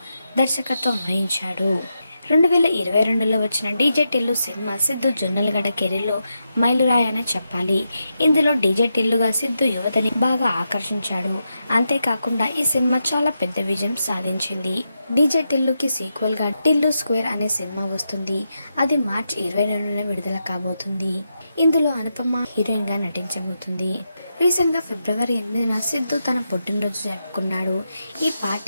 దర్శకత్వం వహించాడు. 2022లో వచ్చిన డీజే టిల్లు సినిమా సిద్ధు జొన్నలగడ్డ కెరీర్లో మైలురాయి అని చెప్పాలి. ఇందులో డీజే టిల్లుగా సిద్ధు యువతని బాగా ఆకర్షించాడు. అంతేకాకుండా ఈ సినిమా చాలా పెద్ద విజయం సాధించింది. డీజే టిల్లుకి సీక్వెల్గా టిల్లు స్క్వేర్ అనే సినిమా వస్తుంది. అది మార్చి 22న విడుదల కాబోతుంది. ఇందులో అనుపమ హీరోయిన్గా నటించబోతుంది. రీసెంట్గా ఫిబ్రవరి 8న సిద్ధు తన పుట్టినరోజు జరుపుకున్నాడు. ఈ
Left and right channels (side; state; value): both; inverted; correlation -0.86